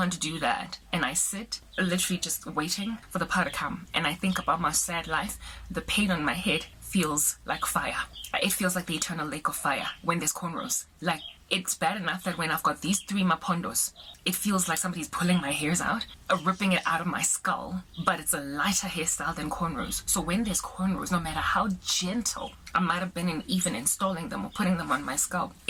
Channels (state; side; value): identical; both; correlation 1.00